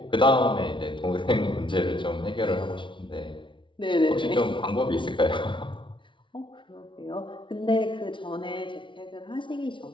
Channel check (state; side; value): late; right; 0.24 ms